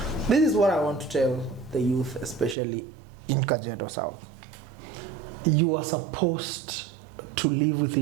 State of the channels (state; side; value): drops out; left; at 2.6 s